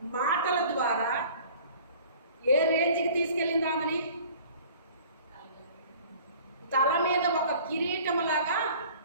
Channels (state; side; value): inverted; both; correlation -0.48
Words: మాటల ద్వారా ఏ రేంజ్కి తీసుకెళ్ళింది ఆమెని? తల మీద ఒక కిరీటంలాగా